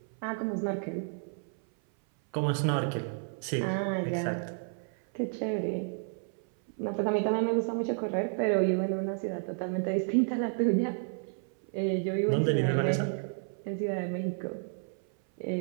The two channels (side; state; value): left; silent; 57 dB below the other